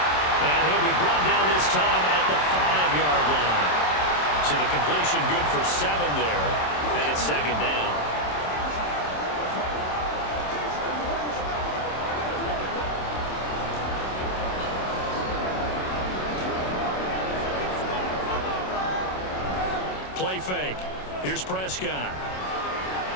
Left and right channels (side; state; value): right; late; 27 ms